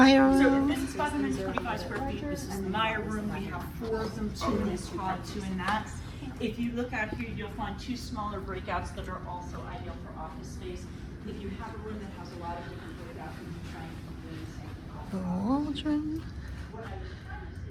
So room. this is 525 square feet. This is the Meyer room. We have 4 of them, 2 in this pod, 2 in that. If you look out here, you'll find 2 smaller breakouts that are also ideal for office space. If you have a room that has a lot of different breakouts, you can try and keep doing the same. The Waldron.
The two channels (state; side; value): identical; both; correlation 1.00